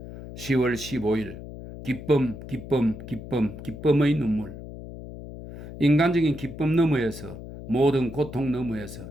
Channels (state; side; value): noise; left; hum, 12 dB below the sound